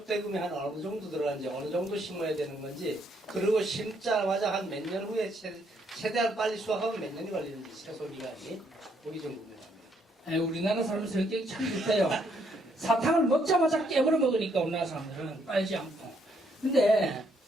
대금이 한 어느 정도 들어가는지 어느 정도 심어야 되는 건지 그리고 심자마자 한 몇 년 후에 최대한 빨리 수확하면 몇 년이 걸리는지 최소 기간이 보기 좀 궁금합니다. 우리나라 사람 성격이 참 좋대요. 사탕을 먹자마자 깨물어 먹으니까 우리나라 사람들은 빨지 않고. 근데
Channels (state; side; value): normal; both; correlation 0.71